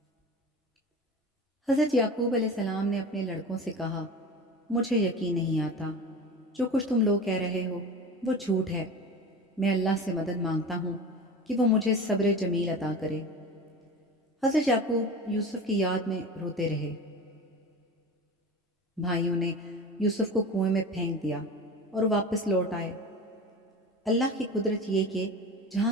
حضرت یعقوب علیہ السلام نے اپنے لڑکوں سے کہا، مجھے یقین نہیں آتا، جو کچھ تم لوگ کہہ رہے ہو وہ جھوٹ ہے۔ میں اللہ سے مدد مانگتا ہوں کہ وہ مجھے صبر جمیل عطا کرے۔ حضرت یعقوب یوسف کی یاد میں روتے رہے۔ بھائیوں نے یوسف کو کنویں میں پھینک دیا اور واپس لوٹ آئے۔ اللہ کی قدرت یہ کہ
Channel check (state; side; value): normal; both; correlation 0.32